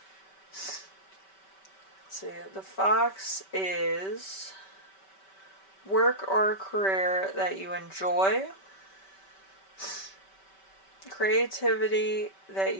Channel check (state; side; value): late; right; 5.2 ms